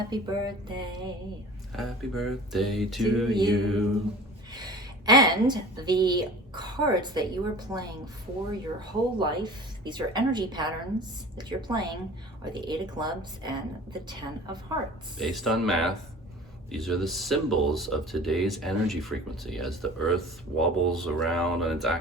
birthday. Happy birthday to you. And the cards that you are playing for your whole life, these are energy patterns that you're playing, are the 8 of clubs and the 10 of hearts. Based on math, these are the symbols of today's energy frequency. As the earth wobbles around on its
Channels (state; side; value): normal; both; correlation 0.42